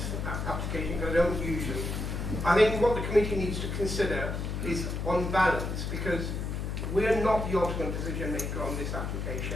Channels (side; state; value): left; noise; hum, 3 dB below the sound